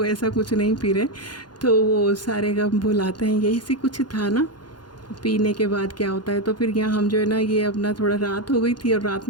ऐसा कुछ नहीं पी रहे। तो वो सारे गम भुलाते हैं, यही से कुछ था ना। पीने के बाद क्या होता है, तो फिर यहाँ हम जो है ना, ये अपना थोड़ा रात हो गई थी, और रात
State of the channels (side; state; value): right; late; 0.71 ms